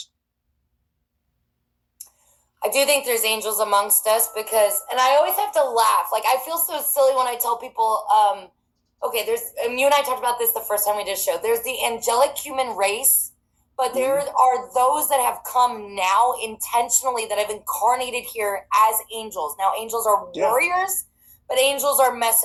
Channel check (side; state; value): both; identical; correlation 1.00